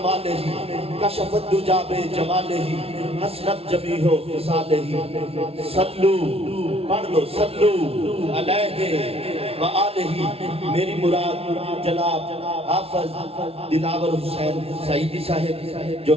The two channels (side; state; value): left; late; 0.29 ms